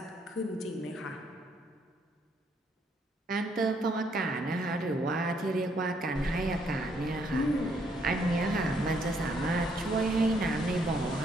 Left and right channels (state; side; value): normal; both; correlation 0.70